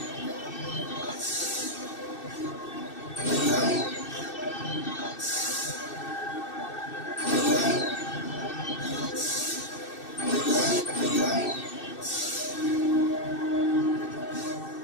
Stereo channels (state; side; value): late; right; 2.6 ms